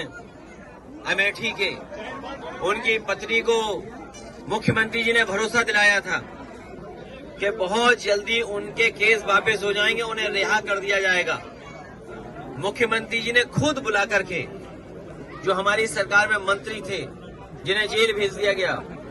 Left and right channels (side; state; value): both; identical; correlation 1.00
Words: अमेठी के, उनकी पत्नी को मुख्यमंत्री जी ने भरोसा दिलाया था कि बहुत जल्दी उनके केस वापस हो जाएंगे, उन्हें रिहा कर दिया जाएगा। मुख्यमंत्री जी ने खुद बुला करके, जो हमारी सरकार में मंत्री थे जिन्हें जेल भेज दिया गया,